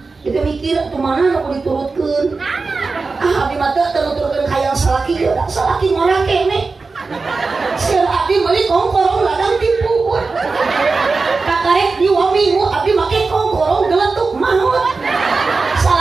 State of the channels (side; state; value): left; quieter; 4.1 dB